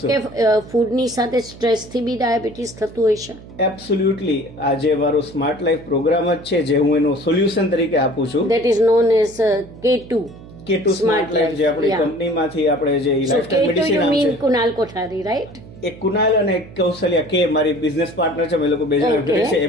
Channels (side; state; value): right; noise; hum, 18 dB below the sound